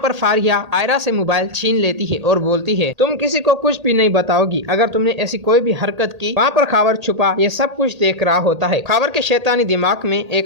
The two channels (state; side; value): late; left; 1.8 ms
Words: फारिया आयरा से मोबाइल छीन लेती है और बोलती है, तुम किसी को कुछ भी नहीं बताओगी। अगर तुमने ऐसी कोई भी हरकत की। वहाँ पर खबर छुपा ये सब कुछ देख रहा होता है। खबर के शैतानी दिमाग में